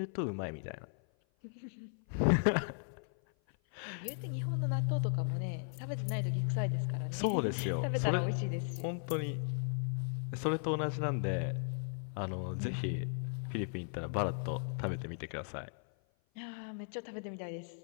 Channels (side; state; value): right; silent; 53 dB below the other